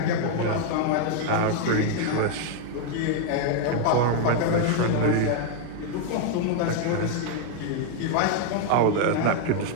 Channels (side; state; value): both; different; correlation 0.00